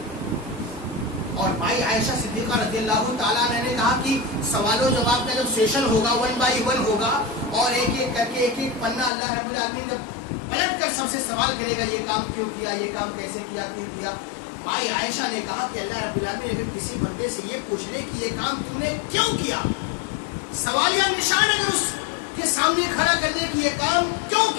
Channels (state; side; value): drops out; right; at 9.1 s